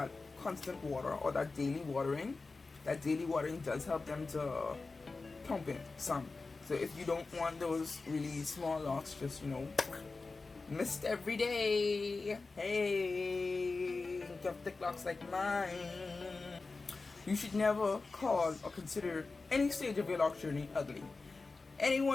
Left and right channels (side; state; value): right; quieter; 3.9 dB